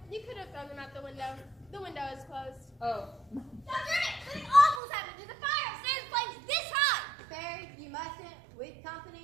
you could have thrown them out the window. The window is closed. Oh. Dr. Emmett, something awful's happened. There's a fire upstairs. The flame's this high. Barry, you mustn't. With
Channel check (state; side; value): drops out; left; at 4.8 s